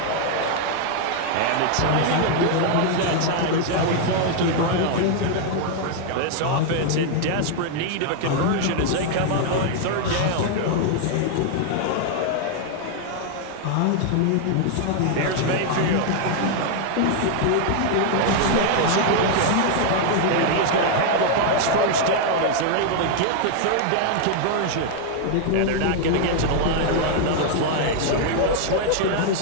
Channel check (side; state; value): both; different; correlation 0.00